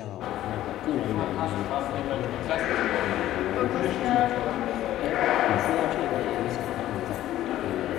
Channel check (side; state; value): right; quieter; 13.6 dB